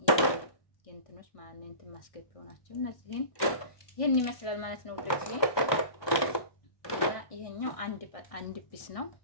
የእንትኖች ማለት ነው እንትን ማስገቢያው ናቸው። እነዚህን ይሄን ይመስላል ማለት ነው ውዶች። ይሄኛው አንድ ቢስ ነው።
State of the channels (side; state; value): right; late; 1.2 ms